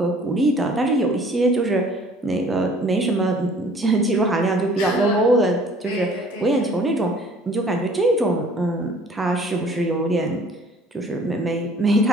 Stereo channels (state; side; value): normal; both; correlation 0.53